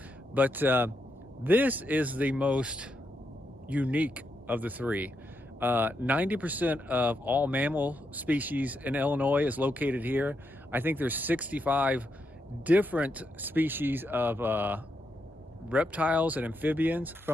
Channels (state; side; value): normal; both; correlation 0.82